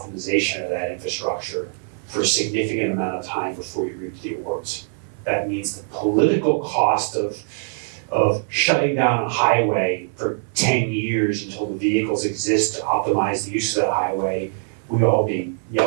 of that infrastructure for a significant amount of time before you reap the rewards. That means the political cost of shutting down a highway for 10 years until the vehicles exist to optimize the use of that highway, we'd all be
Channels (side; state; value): left; silent; digital silence